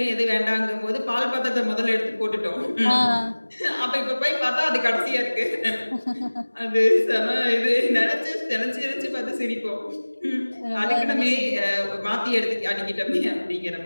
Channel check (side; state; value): both; inverted; correlation -1.00